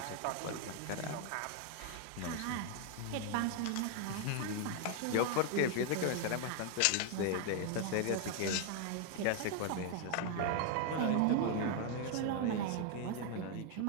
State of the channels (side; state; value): both; different; correlation 0.00